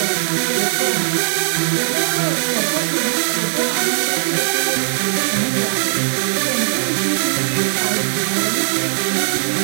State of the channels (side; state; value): left; silent; 67 dB below the other